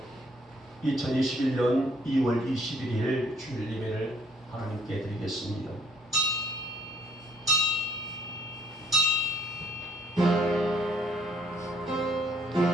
2021년 2월 21일 주일 예배를 하나님께 드리겠습니다.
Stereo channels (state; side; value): normal; both; correlation 0.62